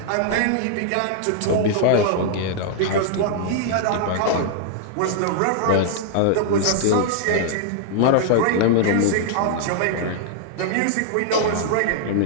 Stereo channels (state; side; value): different; both; correlation -0.01